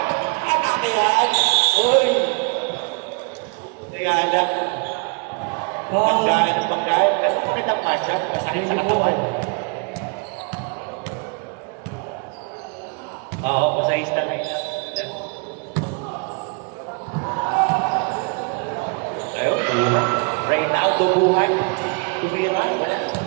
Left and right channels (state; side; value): quieter; left; 33.4 dB